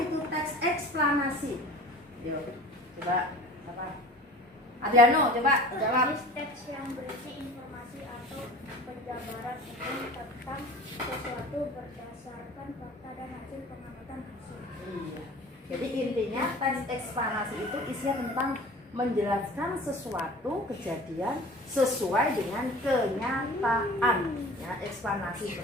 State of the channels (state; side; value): normal; both; correlation 0.42